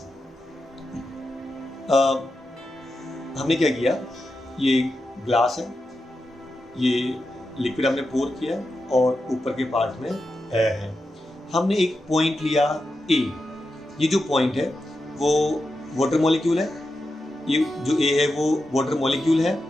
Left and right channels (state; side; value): normal; both; correlation 0.89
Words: हमने क्या किया, ये ग्लास है, ये लिक्विड हमने पोर किया और ऊपर के पार्ट में एयर है। हमने एक पॉइंट लिया ए, ये जो पॉइंट है वो वाटर मॉलिक्यूल है, ये जो ए है वो वाटर मॉलिक्यूल है